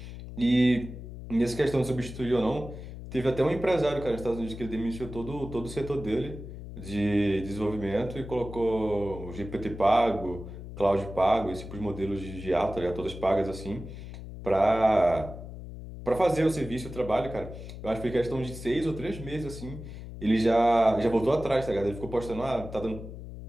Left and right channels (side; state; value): left; noise; hum, 11 dB below the sound